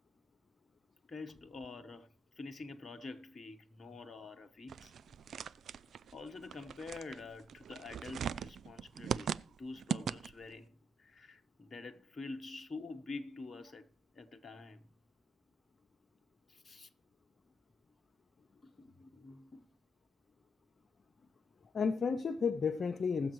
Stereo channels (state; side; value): normal; both; correlation 0.78